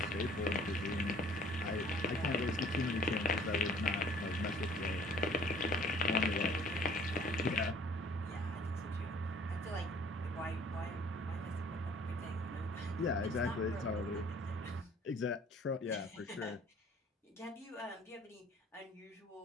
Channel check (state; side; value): normal; both; correlation 0.56